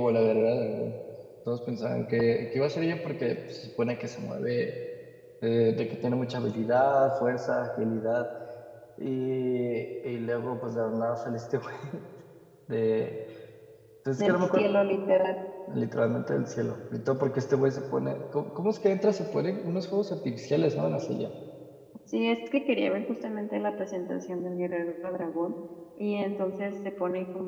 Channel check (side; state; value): both; identical; correlation 1.00